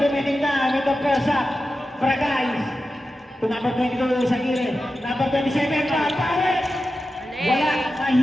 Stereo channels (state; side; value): normal; both; correlation 0.92